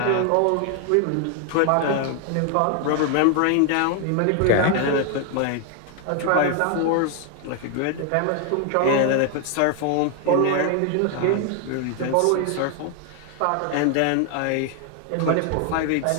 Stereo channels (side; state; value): both; different; correlation 0.00